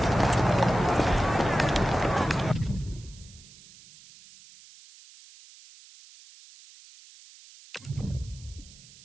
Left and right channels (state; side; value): noise; right; hiss, 22 dB below the sound